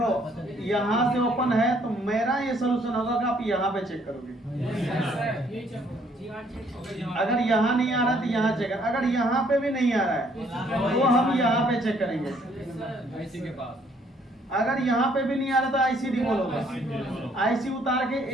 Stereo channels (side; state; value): both; normal; correlation 0.65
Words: यहाँ से ओपन है तो मेरा ये सोल्यूशन होगा कि आप यहाँ पे चेक करोगे। अगर यहाँ नहीं आ रहा तो यहाँ चेक कर, अगर यहाँ पे भी नहीं आ रहा है तो हम यहाँ पे चेक करेंगे। अगर यहाँ पे भी नहीं आ रहा तो आईसी रिमूव होगा। आईसी उतार के